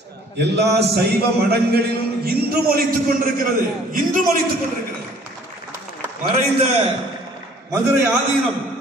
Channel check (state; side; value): normal; both; correlation 0.55